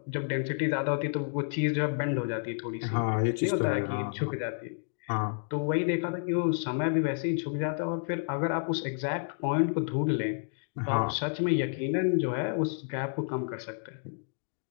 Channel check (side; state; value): right; silent; digital silence